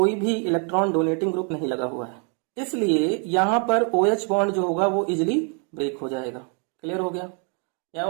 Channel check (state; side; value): quieter; left; 39.2 dB